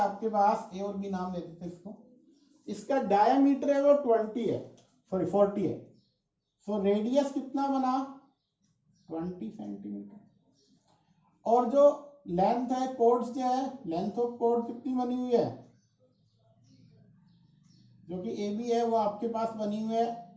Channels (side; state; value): both; identical; correlation 1.00